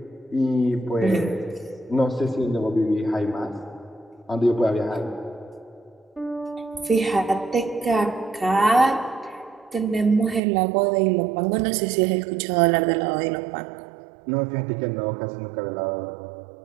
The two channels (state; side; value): drops out; left; at 10.4 s